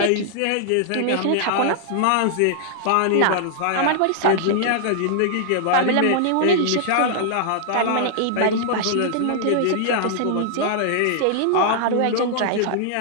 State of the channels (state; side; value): different; both; correlation -0.01